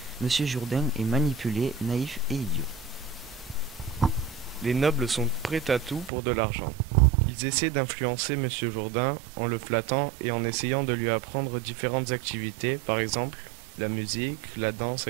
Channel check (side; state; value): left; drops out; at 6.1 s